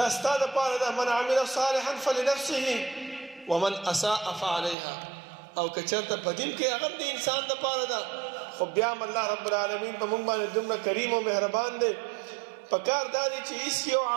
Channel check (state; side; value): drops out; left; at 4.8 s